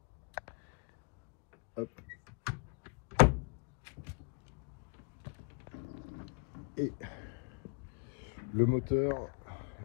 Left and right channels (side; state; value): right; quieter; 35.4 dB